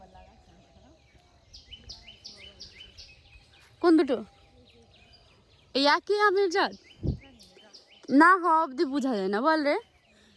কোন দুটো? এই একই আমের জাত না, হওয়া অব্দি বোঝা যায় না বল রে,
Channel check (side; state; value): both; identical; correlation 1.00